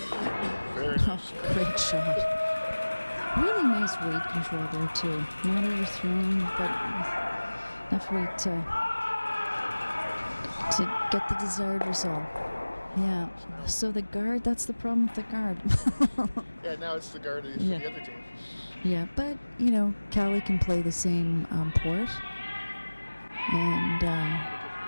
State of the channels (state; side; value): inverted; both; correlation -1.00